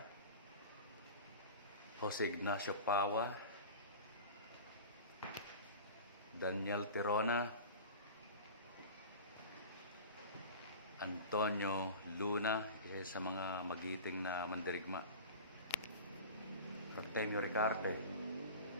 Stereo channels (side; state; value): both; inverted; correlation -0.35